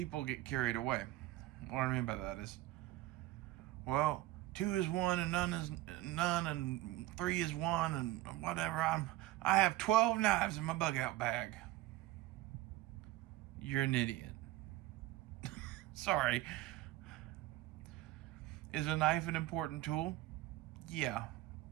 get carried away. What I mean by that is, well, two is one and none is none, and three is one, and whatever. I have 12 knives in my bug out bag. You're an idiot. Sorry. Is a knife an important tool? Yeah.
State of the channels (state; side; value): quieter; left; 16.5 dB